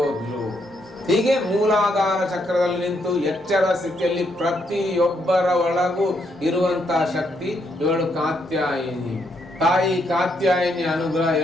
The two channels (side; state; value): both; normal; correlation 0.76